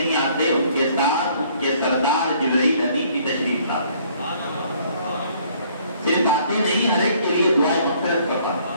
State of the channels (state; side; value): inverted; both; correlation -0.61